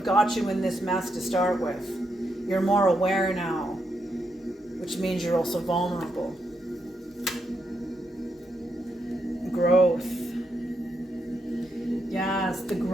got you in this mess to start with. You're more aware now, which means you're also vulnerable. Growth. Yes, the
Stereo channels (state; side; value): normal; both; correlation 0.81